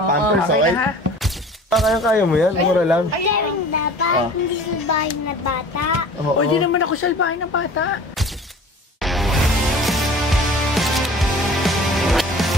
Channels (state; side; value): normal; both; correlation 0.44